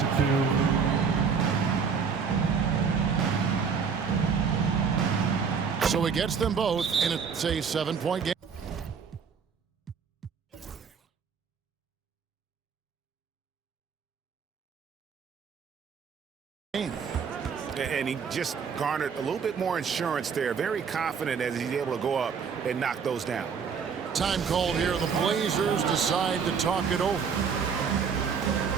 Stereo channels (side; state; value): left; quieter; 6.2 dB